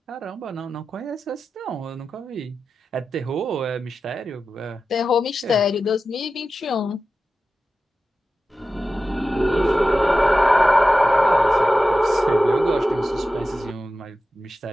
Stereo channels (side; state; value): both; normal; correlation 0.93